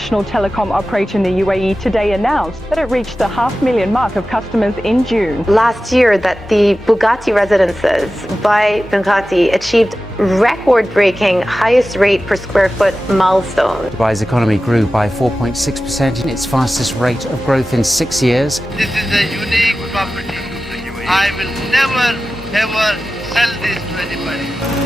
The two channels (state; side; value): normal; both; correlation 0.95